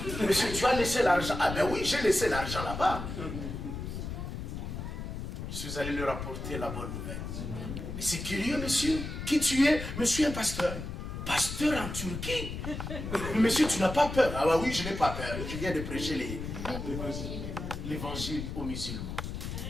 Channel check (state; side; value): noise; left; rumble, 6 dB below the sound